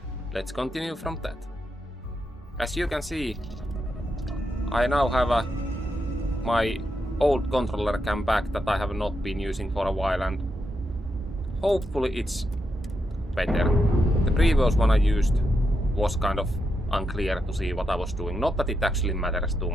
let's continue from that. As you can see, I now have my old controller cam back that I have not been using for a while, and hopefully it's better. The previous one I used was kind of unclear to see what I was doing. Not that it actually matters too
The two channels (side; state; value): both; normal; correlation 0.84